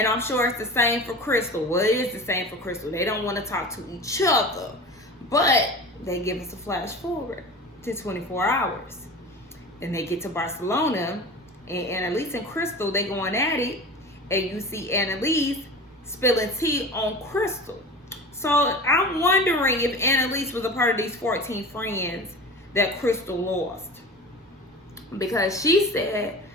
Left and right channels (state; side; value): normal; both; correlation 0.35